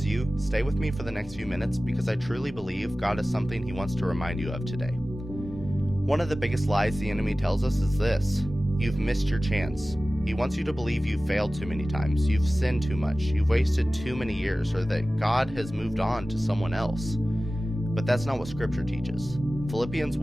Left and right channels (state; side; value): normal; both; correlation 0.96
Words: you, stay with me for the next few minutes because I truly believe God has something He wants to remind you of today. One of the biggest lies the enemy tells us is this: you've missed your chance. He wants you to believe you've failed too many times, you've sinned too much, you've wasted too many years, or that God has moved on to someone else. But that's not what Scripture teaches. Philippians